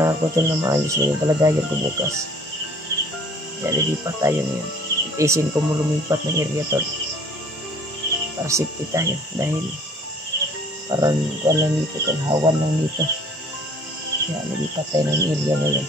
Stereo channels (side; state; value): both; normal; correlation 0.54